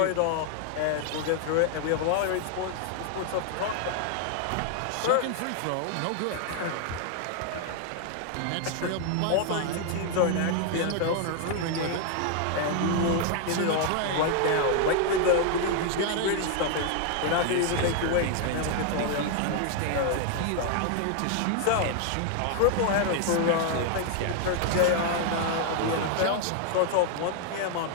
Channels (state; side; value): different; both; correlation 0.00